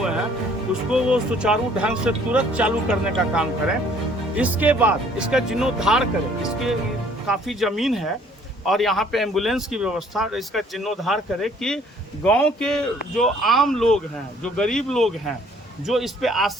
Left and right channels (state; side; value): normal; both; correlation 0.59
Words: हैं उसको वो सुचारू ढंग से तुरंत चालू करने का काम करें। इसके बाद इसका जीर्णोद्धार करें। इसके काफ़ी ज़मीन है और यहाँ पे एम्बुलेंस की व्यवस्था, इसका जीर्णोद्धार करें कि गांव के जो आम लोग हैं, जो गरीब लोग हैं, जो इस पे